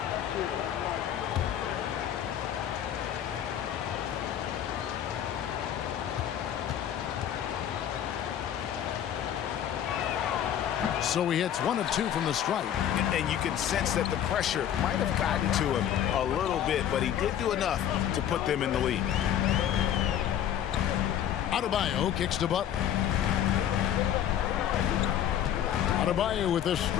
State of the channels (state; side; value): quieter; right; 10.3 dB